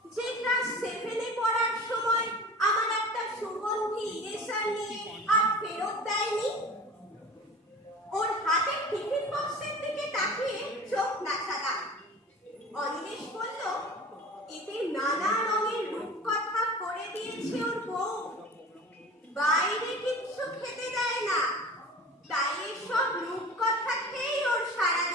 যে ক্লাস 7-এ পড়ার সময় আমার একটা সুগন্ধি ইরেজার নিয়ে আর ফেরত দেয়নি? ওর হাতের টিফিন বক্সের দিকে তাকিয়ে চোখ নাচালাম। অনিমেষ বলল এতে নানা রঙের রূপকথা করে দিয়েছে ওর বউ। বাইরে কিচ্ছু খেতে দেয় না, তাই এসব রূপকথা খেয়েই ওর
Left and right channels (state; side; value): normal; both; correlation 0.38